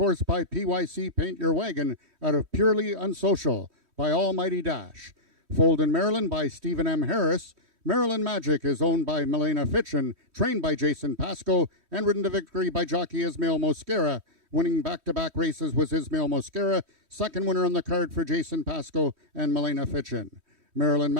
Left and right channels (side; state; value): left; late; 3.1 ms